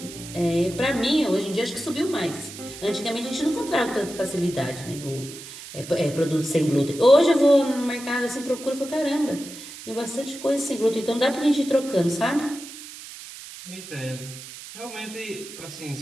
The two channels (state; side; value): noise; right; hiss, 14 dB below the sound